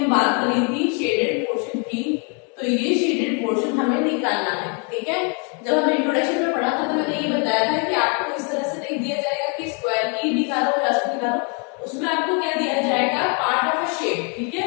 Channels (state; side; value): quieter; right; 36.9 dB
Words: बात करी थी शेडेड पोर्शन की, तो ये शेडेड पोर्शन हमें निकालना है। ठीक है, जब हमने इंट्रोडक्शन में पढ़ा था तो मैंने ये बताया था कि आपको इस तरह से नहीं दिया जाएगा कि स्क्वायर की निकालो या उसको निकालो, उसमें आपको क्या दिया जाएगा पार्ट ऑफ अ शेप। ठीक है,